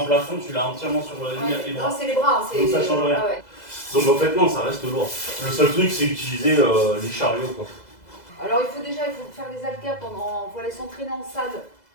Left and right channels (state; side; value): late; right; 2.0 ms